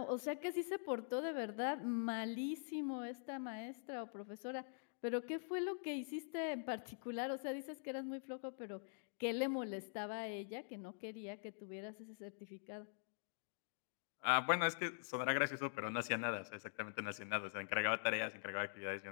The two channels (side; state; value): right; silent; digital silence